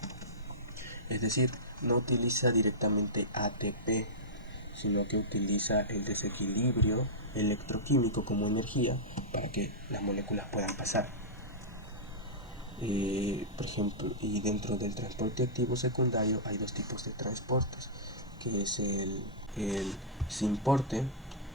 Es decir, no utiliza directamente ATP, sino que utiliza el desequilibrio electroquímico como energía para que las moléculas puedan pasar. Por ejemplo, y dentro del transporte activo secundario hay dos tipos de transportes, que es el sin porte,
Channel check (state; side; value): normal; both; correlation -0.14